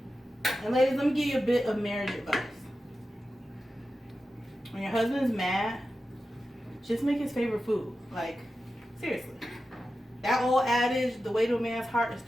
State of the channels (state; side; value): normal; both; correlation 0.92